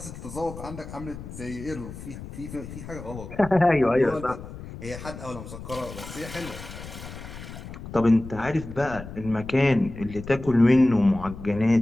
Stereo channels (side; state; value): left; noise; rumble, 12 dB below the sound